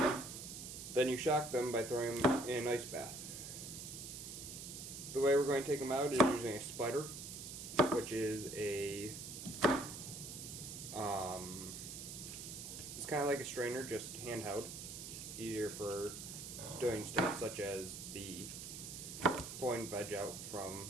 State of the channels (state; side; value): noise; right; hiss, 9 dB below the sound